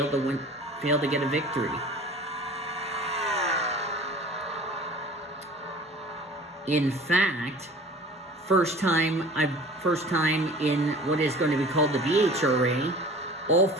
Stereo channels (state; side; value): normal; both; correlation 0.43